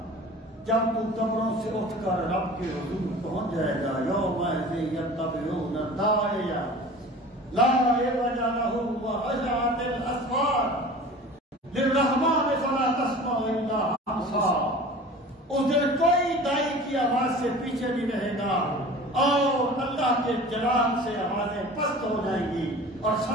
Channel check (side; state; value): both; normal; correlation 0.40